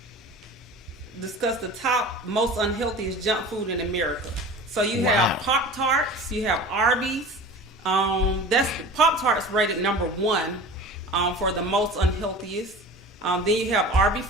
top most unhealthiest junk food in America. So you have Pop-Tarts, you have Arby's. That's Pop-Tarts rated number 1 for the most unhealthiest. Then you have Arby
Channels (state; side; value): normal; both; correlation 0.37